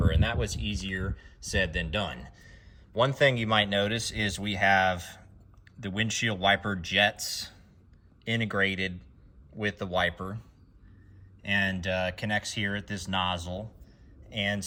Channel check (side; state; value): both; identical; correlation 1.00